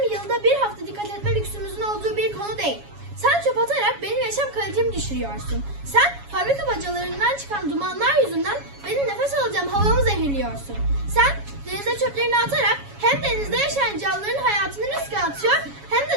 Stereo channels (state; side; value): late; left; 7.2 ms